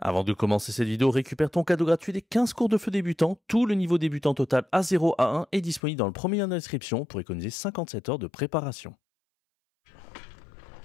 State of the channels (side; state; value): right; drops out; at 5.8 s